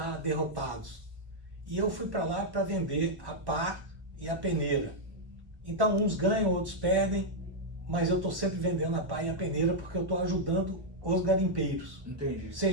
derrotados. E eu fui para lá para vender a pá e a peneira. Então uns ganham, outros perdem, mas eu estou sempre vendendo a pá e a peneira porque eu estou ajudando os garimpeiros. Entendi.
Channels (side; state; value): left; late; 1.1 ms